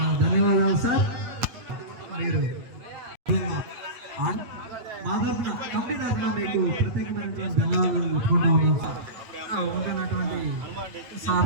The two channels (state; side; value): late; left; 9.0 ms